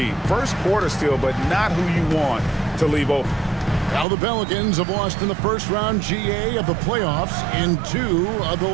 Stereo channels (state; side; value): drops out; left; at 4.0 s